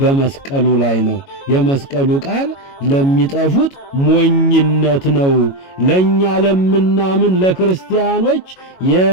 ላይ ነው። የመስቀሉ ቃል ለሚጠፉት ሞኝነት ነው፣ ለኛ ለምናምን ለክርስቲያኖች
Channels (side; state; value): right; late; 22 ms